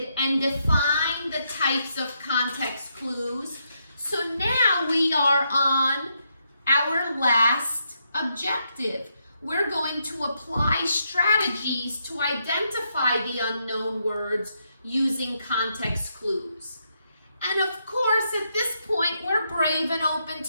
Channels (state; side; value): inverted; both; correlation -0.79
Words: and defined the types of context clues. So now we are on our last objective. We're going to apply strategies to identify the unknown words using context clues. And of course, at this point, we're brave and open